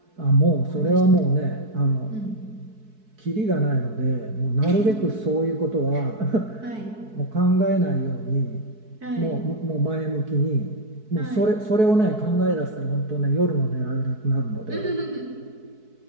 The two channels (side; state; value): left; late; 4.6 ms